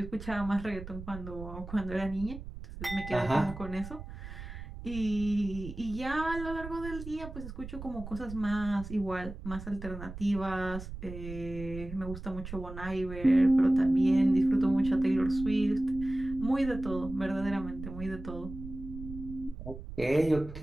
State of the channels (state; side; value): noise; right; rumble, 11 dB below the sound